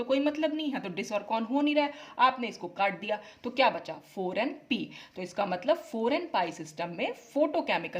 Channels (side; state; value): both; identical; correlation 1.00